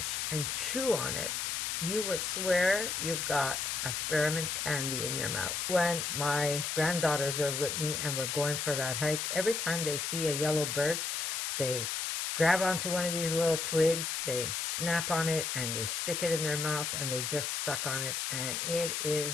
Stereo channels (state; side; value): noise; left; hiss, 1 dB below the sound